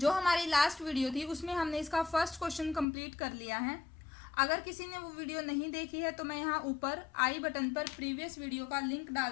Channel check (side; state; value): right; drops out; at 2.9 s